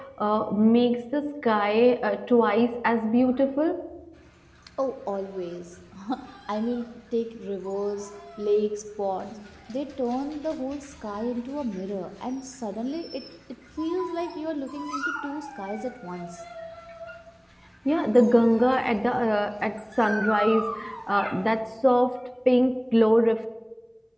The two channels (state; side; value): identical; both; correlation 1.00